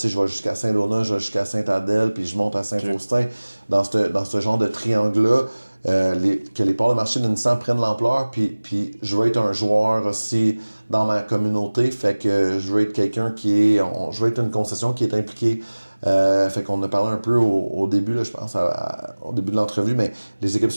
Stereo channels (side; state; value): both; inverted; correlation -1.00